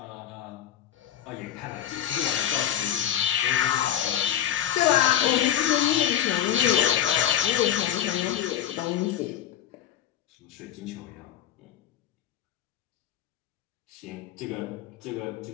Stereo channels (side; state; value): right; quieter; 11.0 dB